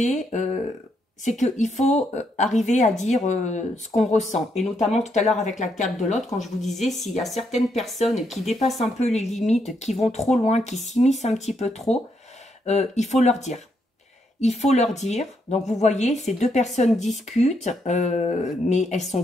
c'est qu'il faut arriver à dire ce qu'on ressent. Et notamment, tout à l'heure, avec la carte de l'autre, quand je vous disais, s'il y a certaines personnes qui dépassent un peu les limites, qui vont trop loin, qui s'immiscent un petit peu trop, il faut leur dire. Il faut leur dire, donc vous voyez, ces deux personnes discutent, mais elles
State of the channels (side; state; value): both; normal; correlation 0.77